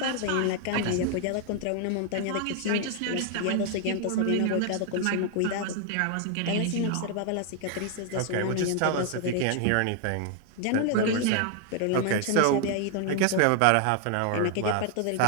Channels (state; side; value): different; both; correlation 0.00